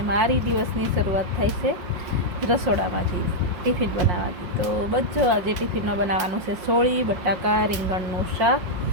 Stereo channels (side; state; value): left; late; 5.6 ms